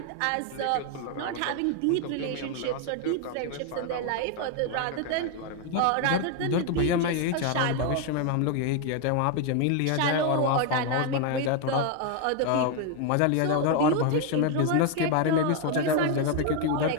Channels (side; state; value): both; different; correlation 0.01